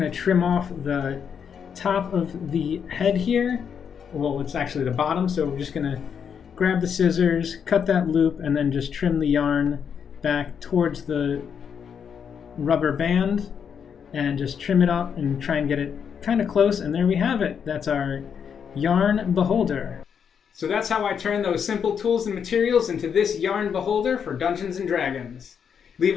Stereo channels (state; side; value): quieter; right; 7.3 dB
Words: to trim off the top of the head here. Well, it's actually the bottom, so we're just going to grab the scissors, cut that loop, and then just trim the yarn back towards the rubber band and just trim it up and try and get it kind of close, and there we have it. That's our yarn beholder. So that's how I turn those simple tools and materials into this yarn beholder for Dungeons & Dragons. Leave